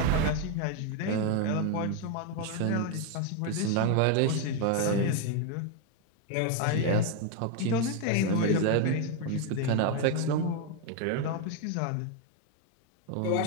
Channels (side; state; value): both; different; correlation 0.01